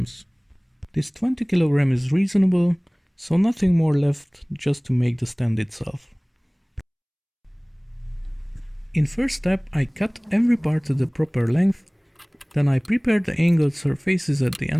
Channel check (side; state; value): both; identical; correlation 1.00